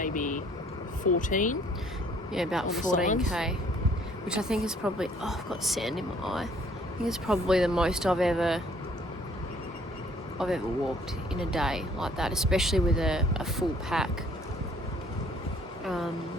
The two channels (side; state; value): both; normal; correlation 0.59